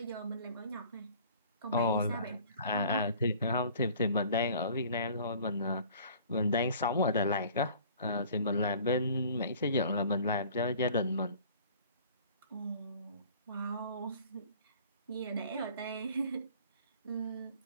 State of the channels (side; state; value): both; inverted; correlation -0.50